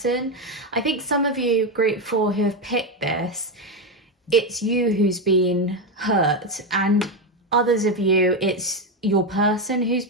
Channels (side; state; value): both; normal; correlation 0.09